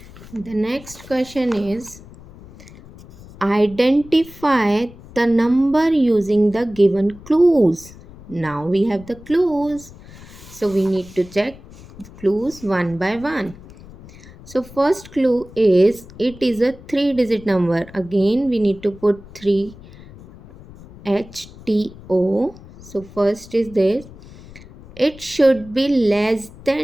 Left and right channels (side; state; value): left; noise; rumble, 19 dB below the sound